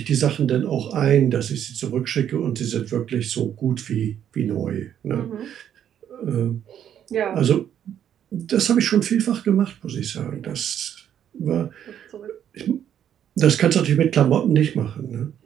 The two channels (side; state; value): left; quieter; 9.7 dB